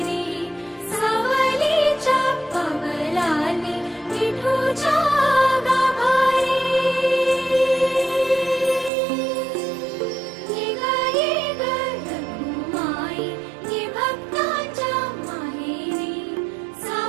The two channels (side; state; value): left; drops out; at 8.9 s